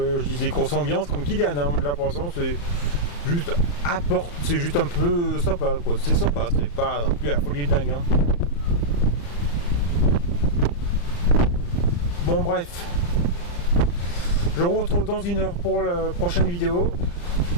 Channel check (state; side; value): late; right; 35 ms